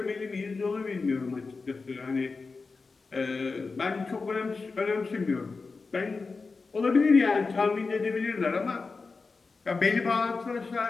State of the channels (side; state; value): right; quieter; 4.3 dB